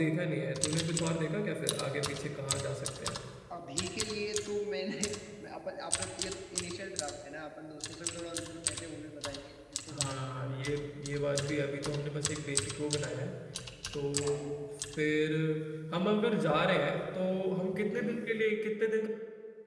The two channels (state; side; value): identical; both; correlation 1.00